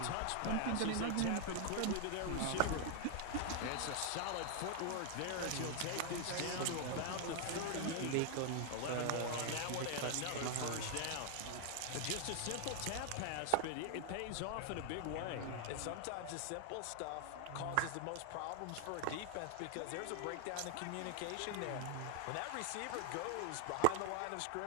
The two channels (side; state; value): both; different; correlation 0.00